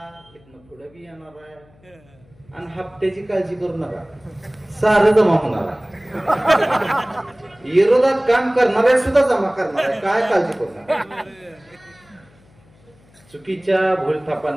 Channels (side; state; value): left; noise; hum, 29 dB below the sound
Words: इथनं पुढे बी येणार आहे. आणि हप्त्याची काळजी करू नका सारं जमा होणार आहे. विरोधात काम करणारे सुद्धा जमा करणार आहे. काय काळजी करू नका. चुकीच्या